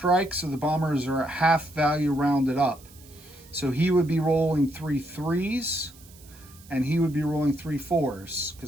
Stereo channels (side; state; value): right; noise; hiss, 23 dB below the sound